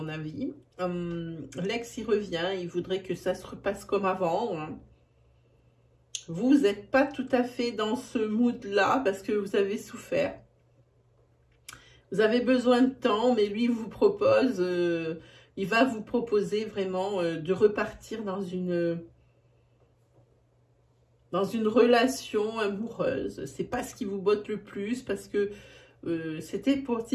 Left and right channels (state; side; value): identical; both; correlation 1.00